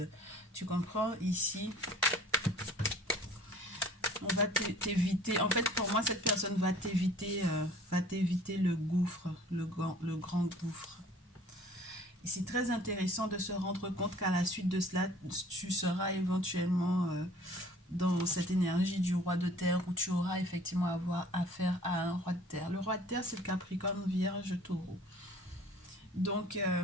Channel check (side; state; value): both; normal; correlation 0.51